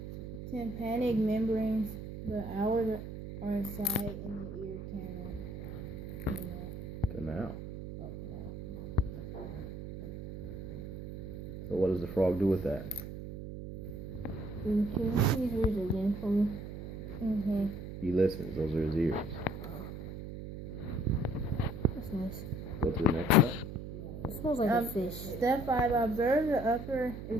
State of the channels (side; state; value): right; noise; hum, 9 dB below the sound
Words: tympanic membranes. The hours are inside in the ear canal. Canal. So what does the frog do with that? Can you please read it again for me? Mm-hmm. He listens. Those are his ears. That's nice. Go to the next step. It smells like a fish. Step 5. Observe the upper